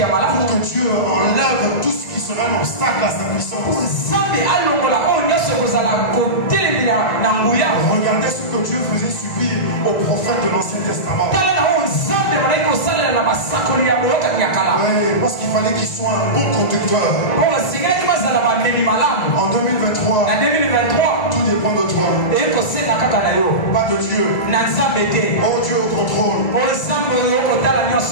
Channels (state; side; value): late; right; 1.9 ms